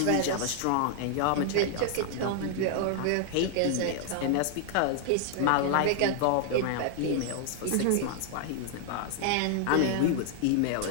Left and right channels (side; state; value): both; different; correlation 0.00